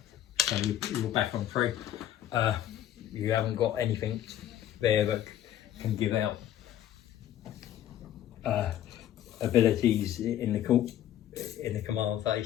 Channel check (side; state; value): right; quieter; 11.8 dB